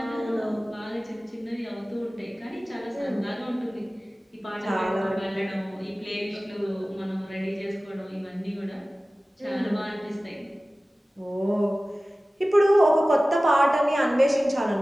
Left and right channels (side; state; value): both; normal; correlation 0.97